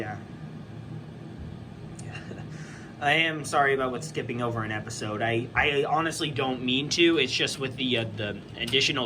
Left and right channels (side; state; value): both; identical; correlation 1.00